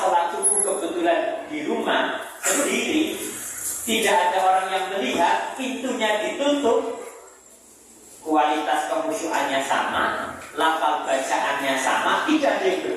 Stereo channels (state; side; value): identical; both; correlation 1.00